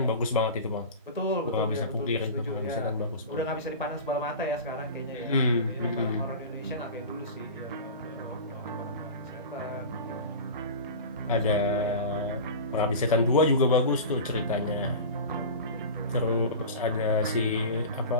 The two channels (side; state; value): both; inverted; correlation -0.31